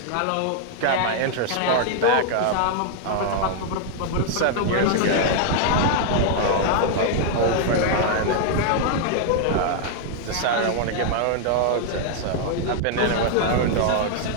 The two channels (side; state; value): both; different; correlation 0.00